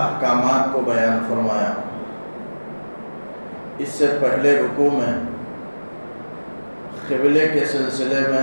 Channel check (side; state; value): both; inverted; correlation -1.00